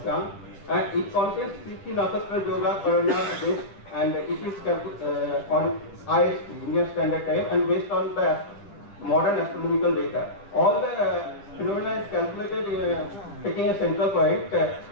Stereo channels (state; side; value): late; right; 9.9 ms